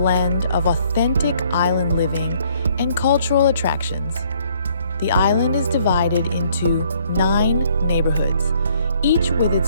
of authentic island living and cultural attractions. The island is divided into 9 neighborhoods, each with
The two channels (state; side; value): inverted; both; correlation -0.64